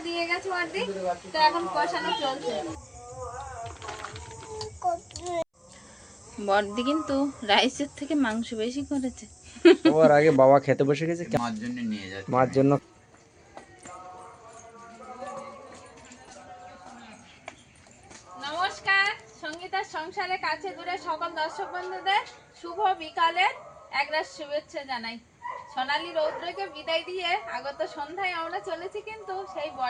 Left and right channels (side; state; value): both; identical; correlation 1.00